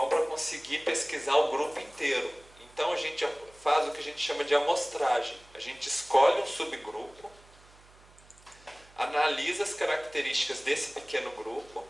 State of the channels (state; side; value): noise; right; hum, 26 dB below the sound